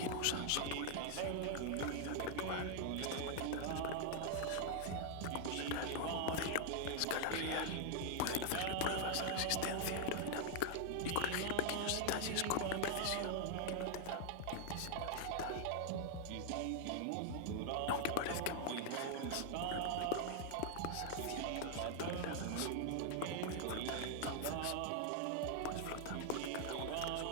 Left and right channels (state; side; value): different; both; correlation 0.00